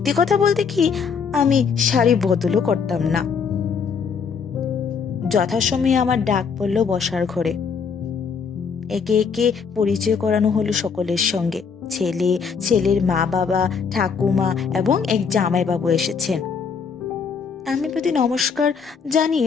কথা বলতে কি, আমি শাড়ি বদলও করতাম না। যথাসময়ে আমার ডাক পড়ল বসার ঘরে। একে একে পরিচয় করানো হলো সকলের সঙ্গে। ছেলে, ছেলের মা বাবা, ঠাকুমা এবং এক জামাইবাবু এসেছেন। আমি প্রতি নমস্কার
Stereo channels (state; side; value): quieter; right; 6.0 dB